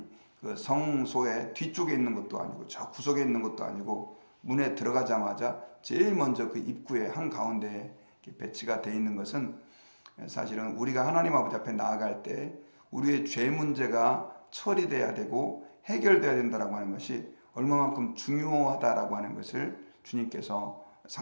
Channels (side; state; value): both; inverted; correlation -1.00